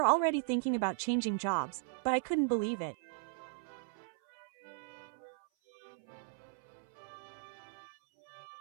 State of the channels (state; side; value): silent; left; 53 dB below the other